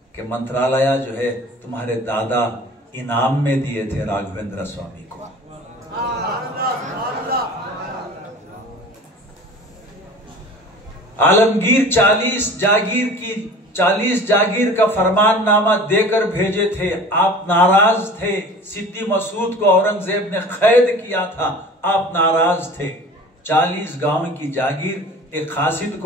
कि मंत्रालय जो है तुम्हारे दादा इनाम में दिए थे राघवेंद्र स्वामी को। आलमगीर 40 जागीर की 40 जागीर का फरमाननामा देकर भेजे थे, आप नाराज थे। सिद्दी मसूद को औरंगजेब ने कैद किया था, आप नाराज थे। 40 गांव की जागीर एक खासिद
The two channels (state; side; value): normal; both; correlation 0.42